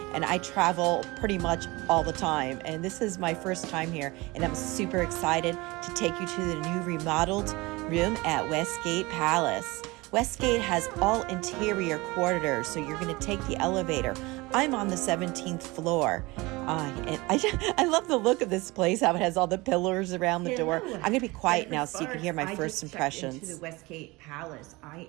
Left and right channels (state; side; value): quieter; left; 22.9 dB